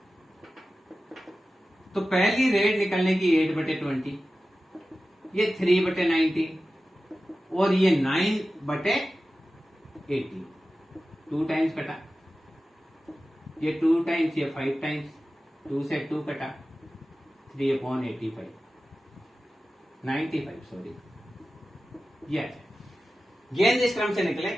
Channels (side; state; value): both; normal; correlation 0.94